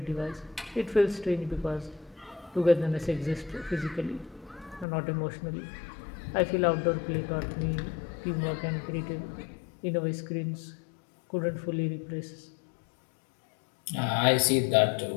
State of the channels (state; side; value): drops out; right; at 4.9 s